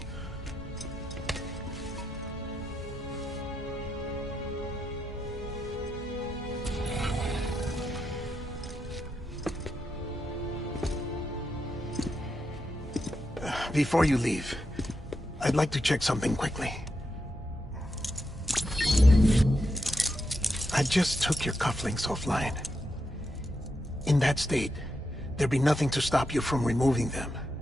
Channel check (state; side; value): normal; both; correlation 0.85